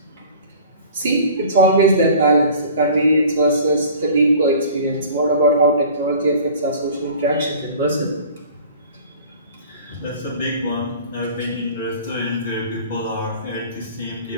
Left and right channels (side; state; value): both; inverted; correlation -0.45